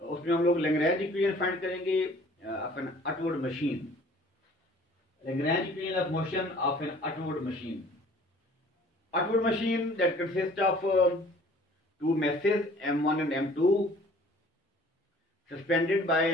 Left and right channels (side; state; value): both; normal; correlation 0.52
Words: हम लोग लैग्रेंज इक्वेशन फाइंड करेंगे of an upward machine. Lagrange equation of motion of an upward machine. Upward machine that consists of two masses m1 and m2 suspended by